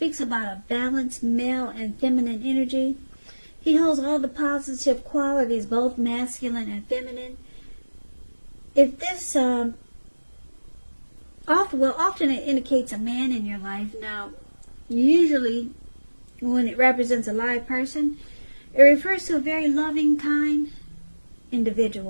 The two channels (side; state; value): both; inverted; correlation -1.00